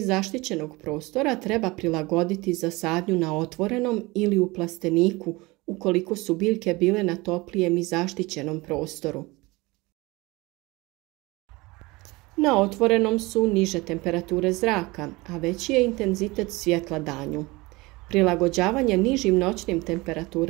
zaštićenog prostora treba prilagoditi za sadnju na otvorenom ili u plasteniku ukoliko su biljke bile na toplijem i zaštićenom prostoru. Na otvorenom su niže temperature zraka, a veći je intenzitet svjetla danju. Prilagođavanje nižim noćnim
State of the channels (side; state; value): left; quieter; 22.8 dB